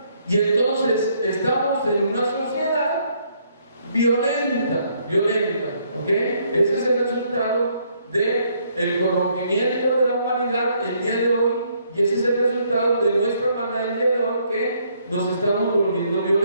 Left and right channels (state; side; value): inverted; both; correlation -0.69